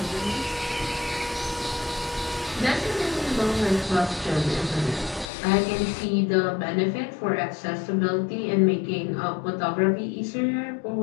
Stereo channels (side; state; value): right; drops out; at 5.3 s